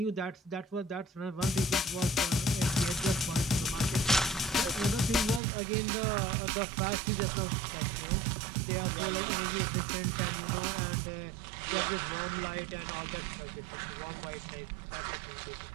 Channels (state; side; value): drops out; left; at 5.4 s